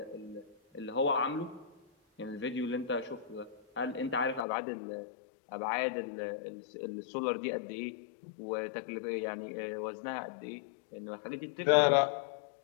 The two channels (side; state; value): right; drops out; at 4.5 s